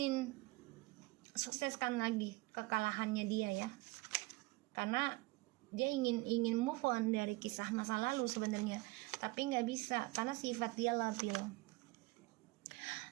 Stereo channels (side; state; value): left; quieter; 22.3 dB